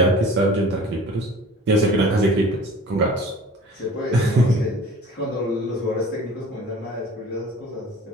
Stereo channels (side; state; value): both; normal; correlation 0.44